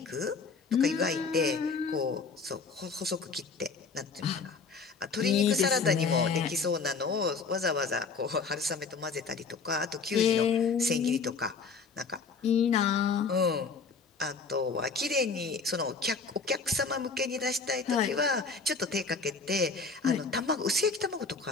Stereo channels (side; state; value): right; quieter; 4.8 dB